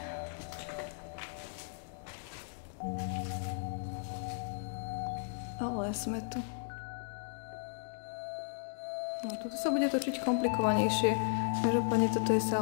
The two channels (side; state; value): right; silent; digital silence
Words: Ale sme tu. No, tuto sa bude točiť komplikovanejšie. Každopádne toto je